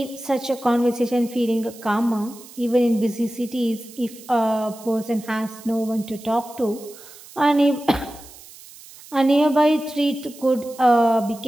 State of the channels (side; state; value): right; noise; hiss, 19 dB below the sound